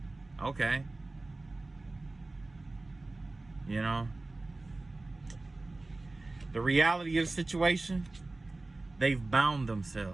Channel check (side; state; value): left; quieter; 3.1 dB